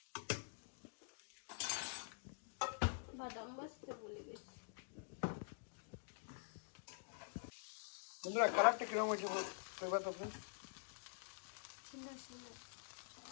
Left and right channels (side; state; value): right; silent; digital silence